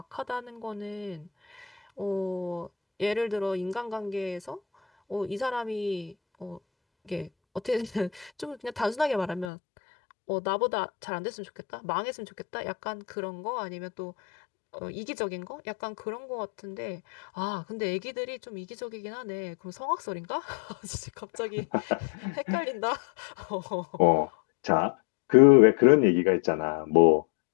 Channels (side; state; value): right; drops out; at 9.5 s